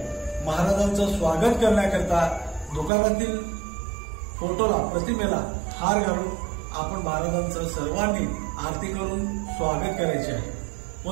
महाराजांचं स्वागत करण्याकरता दुकानातील फोटोला प्रतिमेला हार घालून आपण महाराजांचं सर्वांनी आरती करून स्वागत करायचे आहे।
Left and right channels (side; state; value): left; drops out; at 2.9 s